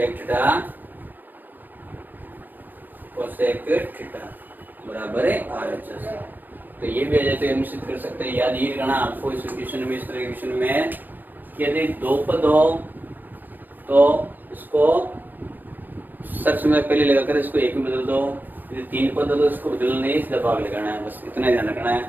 theta cosec theta बराबर है RHS। तो ये भी आ जाए तो निश्चित कर सकते हैं। याद ये करना आपको इस क्वेश्चन में, इस तरह के क्वेश्चन में कि यदि 2 पद हो तो इसको सब समय पहले लगाकर इसको 1 में बदल दो, यदि 3 पद हो तो इसको बदलना नहीं, सीधा भाग लगाना है, बस इतना ध्यान रखना है।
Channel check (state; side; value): late; left; 0.087 ms